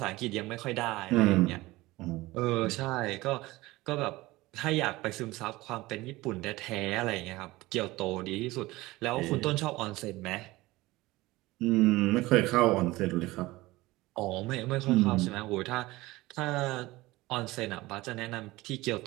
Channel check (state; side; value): quieter; left; 19.6 dB